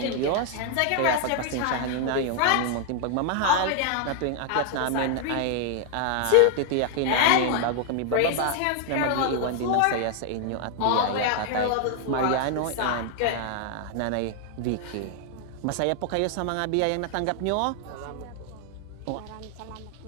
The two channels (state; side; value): different; both; correlation 0.00